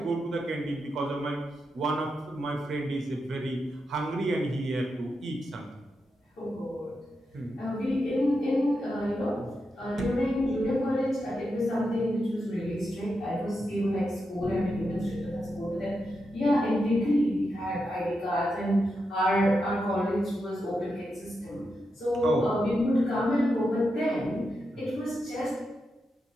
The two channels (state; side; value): normal; both; correlation 0.86